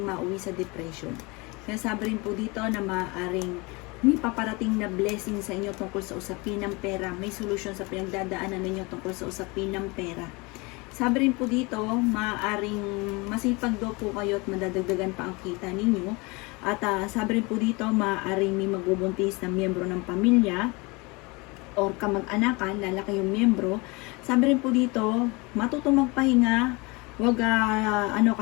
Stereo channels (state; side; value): quieter; right; 26.4 dB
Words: mauwi sa depression. Kaya sabi rin po dito na maaaring may paparating na blessing sa inyo tungkol sa usapin ng pera. May solusyon sa pinagdadaanan ninyo tungkol sa usapin ng pera. Sabi rin po dito, maaaring masipag daw po kayo at madadagdagan pa ang kita ninyo. At sabi rin po dito, maaaring may magbubuntis na miyembro ng pamilya or kamag-anakan, lalaki yung miyembro. Sabi rin po dito, matutong magpahinga. Wag,